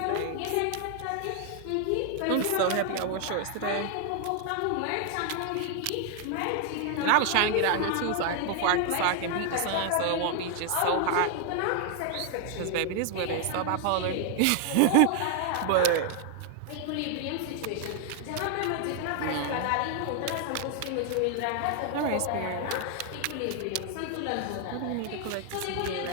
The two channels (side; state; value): both; different; correlation 0.00